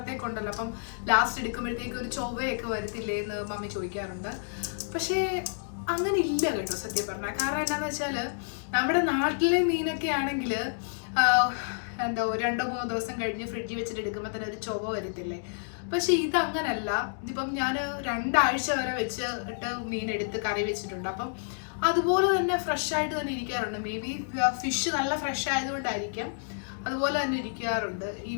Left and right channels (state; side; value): silent; right; digital silence